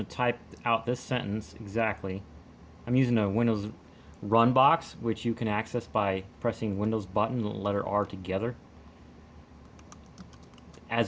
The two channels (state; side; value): identical; both; correlation 1.00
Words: to type out this sentence exactly. I'm using a Windows run box, which you can access by pressing Windows button and letter R together